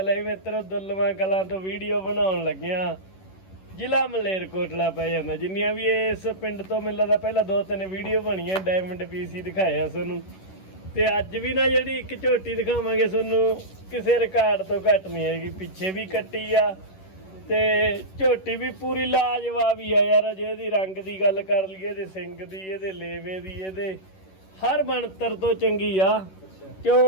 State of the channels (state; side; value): late; right; 11 ms